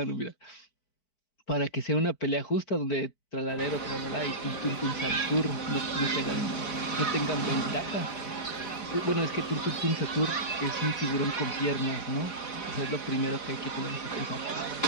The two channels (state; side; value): late; right; 4.9 ms